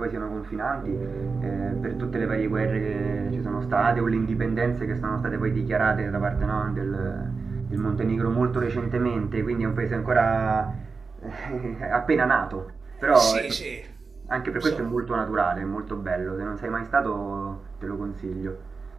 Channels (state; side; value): quieter; left; 4.6 dB